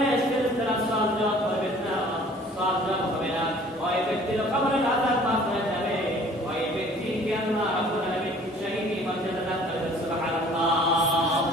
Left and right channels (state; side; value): normal; both; correlation 0.52